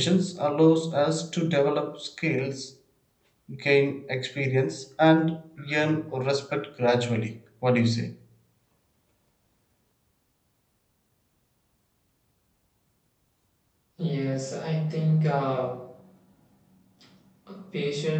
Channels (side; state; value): both; identical; correlation 1.00